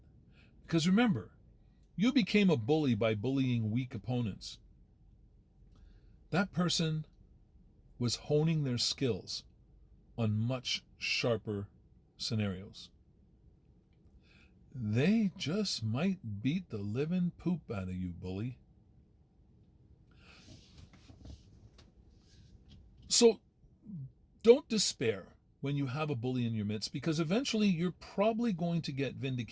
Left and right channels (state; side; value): identical; both; correlation 1.00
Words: Because remember, you became a bully by bullying weak opponents. That person was honing their skills on much sharper scenarios. They just might beat the living poop out of you, bully. So don't despair when you have a bully in your midst, because eventually you're probably going to get